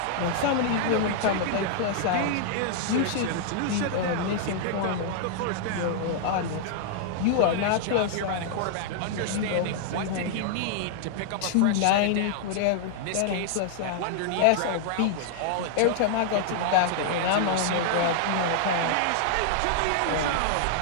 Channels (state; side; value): different; both; correlation -0.01